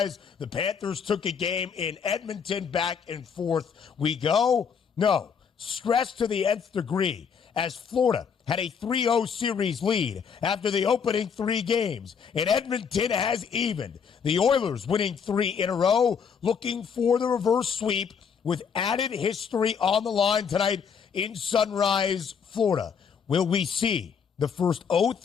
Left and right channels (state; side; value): quieter; right; 6.7 dB